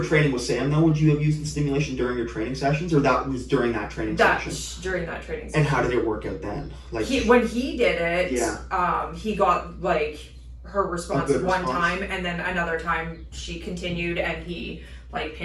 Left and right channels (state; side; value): identical; both; correlation 1.00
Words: training with Sam, though, would you have used the stimulation during your training sessions, or that was during that training session? During that training session. And how did it work out then? When he did it, he got her response one time, and then another time she continued, and he